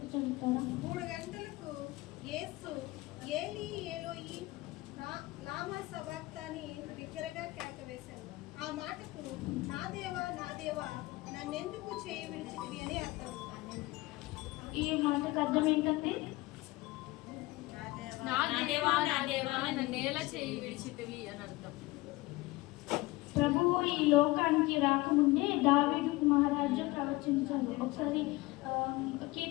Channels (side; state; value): right; quieter; 20.5 dB